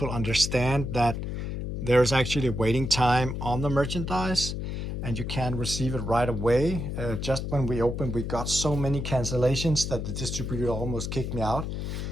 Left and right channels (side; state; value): left; noise; hum, 4 dB below the sound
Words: understand that there's actually a waiting time on the merchandise, and you can receive it right away. Just when we opened, we got so many cancellations that the distributor almost kicked me out.